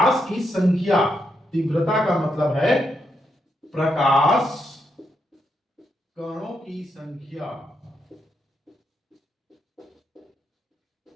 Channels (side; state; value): both; normal; correlation 0.81